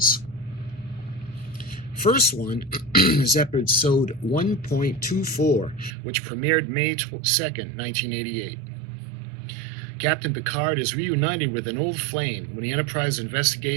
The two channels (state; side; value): drops out; left; at 5.9 s